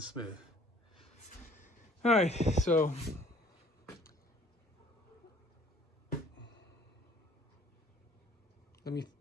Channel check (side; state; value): both; normal; correlation 0.55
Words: smooth. All right, so let me